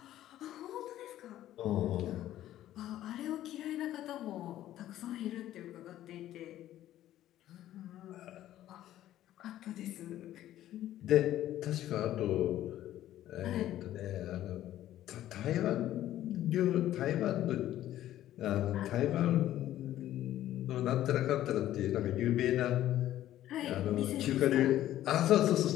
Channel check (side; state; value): right; quieter; 13.1 dB